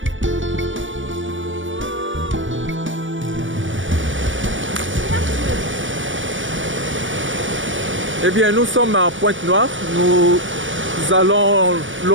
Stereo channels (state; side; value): late; left; 0.56 ms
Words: Eh bien, nous sommes à Pointe-Noire. Nous allons